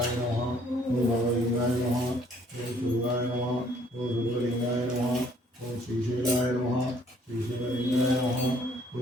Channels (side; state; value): both; normal; correlation 0.62